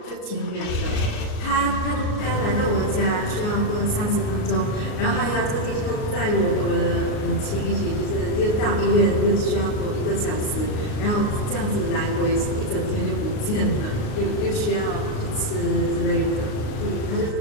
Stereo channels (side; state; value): right; late; 38 ms